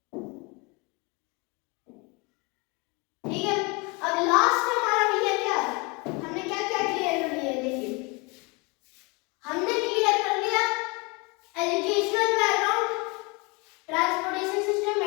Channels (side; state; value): right; quieter; 28.6 dB